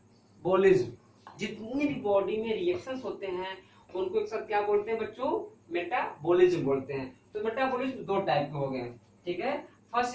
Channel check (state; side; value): identical; both; correlation 1.00